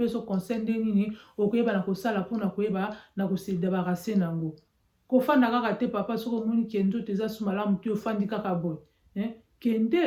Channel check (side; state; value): both; identical; correlation 1.00